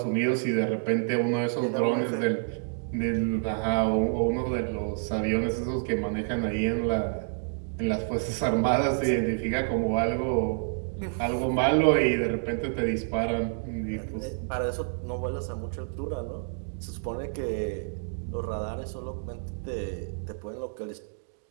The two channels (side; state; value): left; silent; digital silence